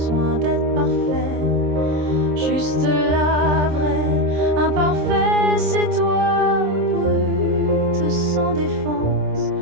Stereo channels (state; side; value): late; left; 26 ms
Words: d'être parfait, juste la vraie. Imparfait, c'est toi, brute, sans défense,